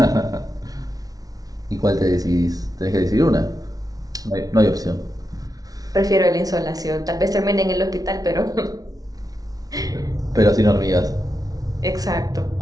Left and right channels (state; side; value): late; left; 0.18 ms